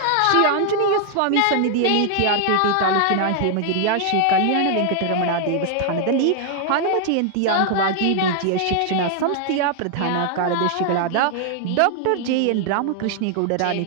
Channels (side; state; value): both; different; correlation 0.00